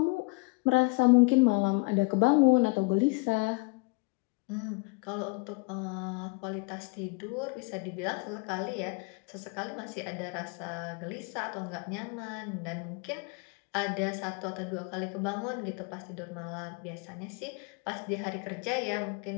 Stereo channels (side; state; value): right; quieter; 29.1 dB